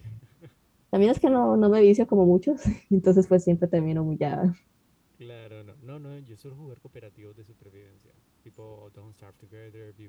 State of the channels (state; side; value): identical; both; correlation 1.00